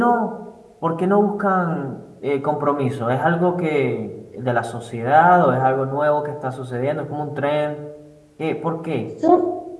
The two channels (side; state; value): both; identical; correlation 1.00